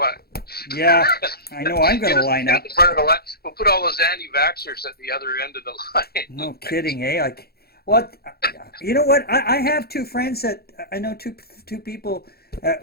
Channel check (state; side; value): late; right; 0.46 ms